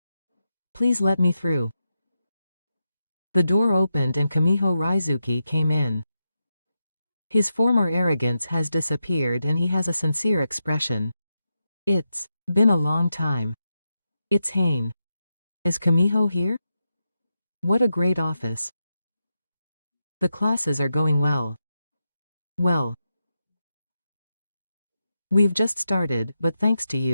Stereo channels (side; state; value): both; inverted; correlation -0.87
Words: Please let me through. The door opened and Kamiho Raizuki came in. His former arrogance has disappeared and he has a sincere expression. It's been a long time. It's Hane. Is Kamiho here? What a great office. The classes are going well. Well. We've just started, but thanks to